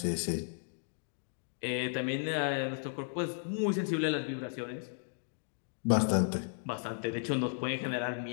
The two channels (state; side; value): silent; right; digital silence